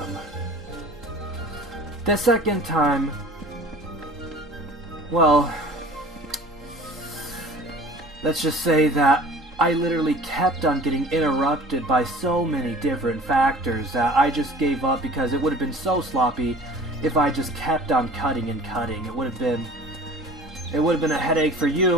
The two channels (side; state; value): both; normal; correlation 0.45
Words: The second time, well, let's just say that I literally kept on getting interrupted by so many different factors that I just gave up because it would have been so sloppy if I just kept on cutting and cutting. It would have been a headache for